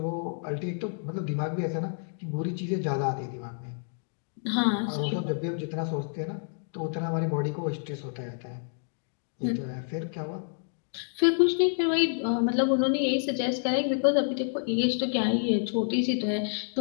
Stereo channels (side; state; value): right; silent; digital silence